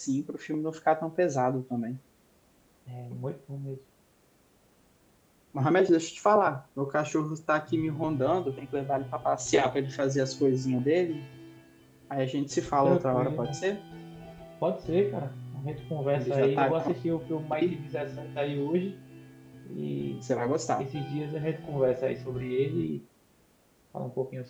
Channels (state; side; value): identical; both; correlation 1.00